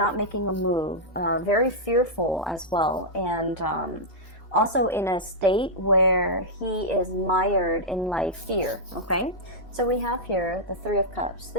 making a move, very fearful as well, and also in a state where he is mired in like fear, okay? So we have here the Three of Cups.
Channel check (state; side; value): normal; both; correlation -0.08